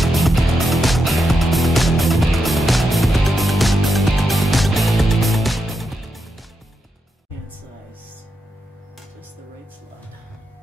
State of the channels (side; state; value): both; normal; correlation 0.84